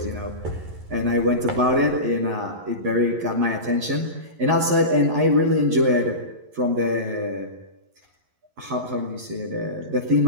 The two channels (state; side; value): late; left; 11 ms